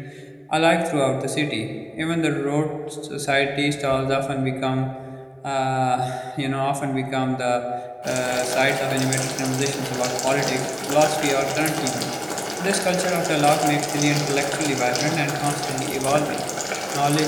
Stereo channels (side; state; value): both; identical; correlation 1.00